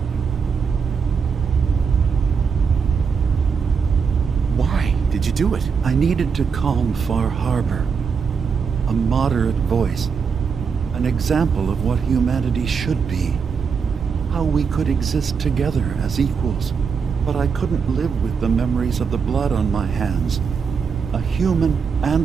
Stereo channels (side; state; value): left; quieter; 6.0 dB